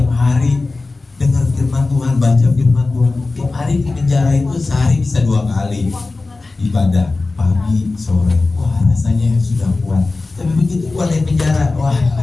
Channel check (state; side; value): quieter; right; 3.5 dB